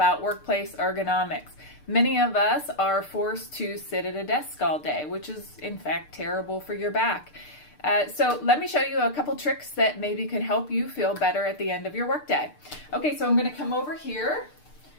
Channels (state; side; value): late; right; 6.7 ms